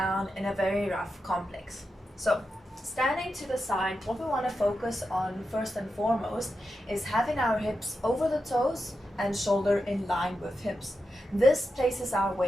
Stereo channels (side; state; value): both; normal; correlation 0.88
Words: in a very rough complex. So standing to the side, what we want to focus on first and foremost is having our hips over the toes and shoulder in line with hips. This places our